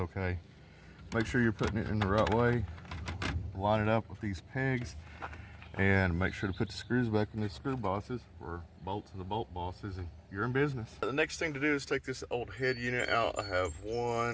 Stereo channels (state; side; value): identical; both; correlation 1.00